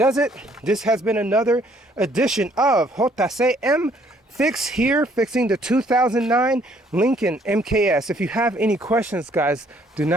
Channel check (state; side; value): normal; both; correlation 0.64